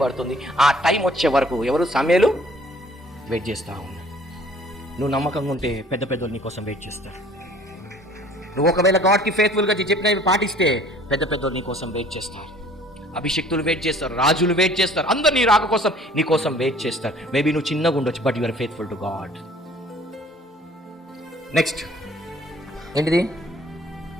పడుతుంది? ఆ టైం వచ్చే వరకు ఎవరు సమయాలు వెయిట్ చేస్తా ఉన్నారు. నువ్వు నమ్మకంగా ఉంటే పెద్ద పెద్దలు నీ కోసం వెయిట్ చేస్తారు. నువ్వు ఒకవేళ గాడ్కి ఫెయిత్ఫుల్గా చెప్పినవి పాటిస్తే పెద్ద పెద్దలు నీ కోసం వెయిట్ చేస్తారు. అభిషక్తులు వెయిట్ చేస్తారు, రాజులు వెయిట్ చేస్తారు, అందరు నీ రాక కోసం నీ కోసం వెయిట్ చేస్తారు. మేబీ నువ్వు చిన్నగా ఉండొచ్చు, but you are faithful to God. Next ఏంటిది?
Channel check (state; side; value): normal; both; correlation 0.53